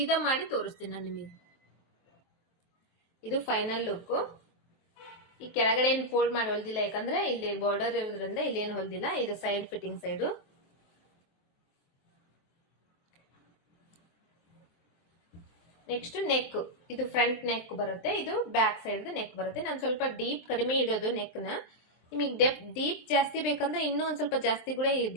ಮಾಡಿ ತೋರಿಸ್ತೀನಿ ನಾನು ನಿಮಗೆ. ಇದು ಫೈನಲ್ ಲುಕ್. ಈ ಕೆಳಗಡೆ ಏನ್ ಫೋಲ್ಡ್ ಮಾಡಿ ಹೊಲ್ದಿಲ್ಲ, ಯಾಕಂದ್ರೆ ಇಲ್ಲಿ ಬಾರ್ಡರ್ ಇರೋದ್ರಿಂದ ಇಲ್ಲಿ ಏನ್ ಹೊಲ್ದಿಲ್ಲ. ಇದು side fitting side. Next neck, ಇದು ಫ್ರಂಟ್ ನೆಕ್ ಬರುತ್ತೆ, ಇದು ಬ್ಯಾಕ್ ಸೈಡ್ ನೆಕ್ ಬರುತ್ತೆ. ನಾನು ಸ್ವಲ್ಪ ಡೀಪ್ ಕಡಿಮೆ ಇಡೋದು ನೆಕ್ ನ. ನಿಮಗೆ ಡೀಪ್ ಜಾಸ್ತಿ ಬೇಕಂದ್ರೆ ಇನ್ನೂ ಒಂದ್ ಸ್ವಲ್ಪ ಜಾಸ್ತಿ ಕೂಡ ಈ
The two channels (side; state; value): right; late; 23 ms